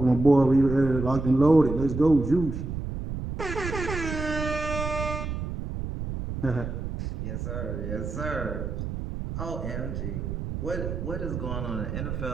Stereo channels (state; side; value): noise; right; rumble, 5 dB below the sound